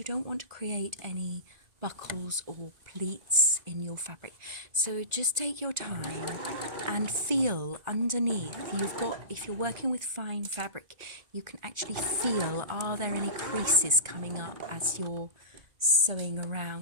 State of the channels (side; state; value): left; late; 2.0 ms